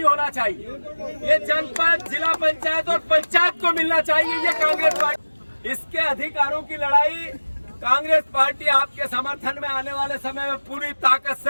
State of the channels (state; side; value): inverted; both; correlation -1.00